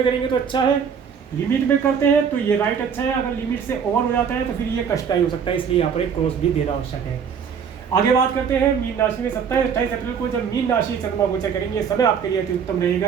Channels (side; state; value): left; quieter; 7.0 dB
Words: करेंगे तो अच्छा है, लिमिट में करते हैं तो ये राइट अच्छा है। अगर लिमिट से ओवर हो जाता है तो फिर ये कष्टदायी हो सकता है, इसलिए यहाँ पर एक क्रॉस भी देना आवश्यक है। आगे बात करते हैं मीन राशि में। 27-28 अप्रैल को जब मीन राशि चंद्रमा गोचर करेंगे समय आपके लिए अति उत्तम